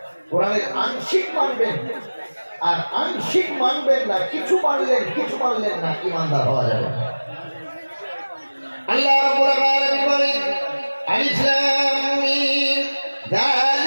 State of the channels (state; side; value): inverted; both; correlation -1.00